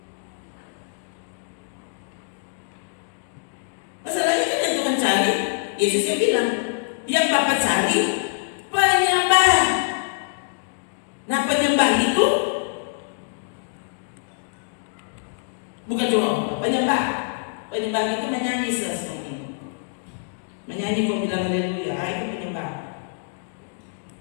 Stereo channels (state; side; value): silent; right; digital silence